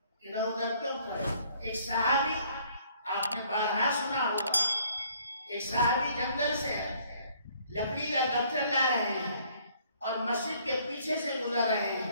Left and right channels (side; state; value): both; inverted; correlation -0.62